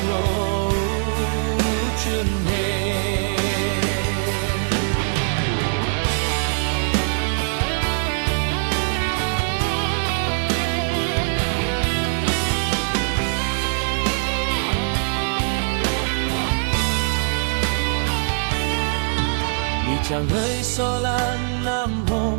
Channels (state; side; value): silent; left; digital silence